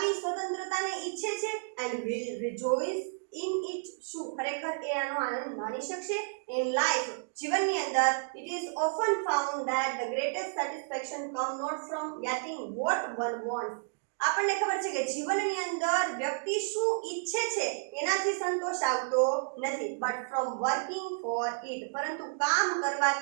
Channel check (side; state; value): left; silent; digital silence